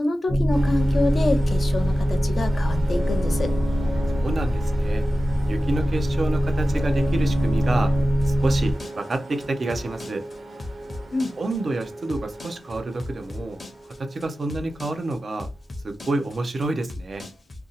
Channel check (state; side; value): normal; both; correlation 0.94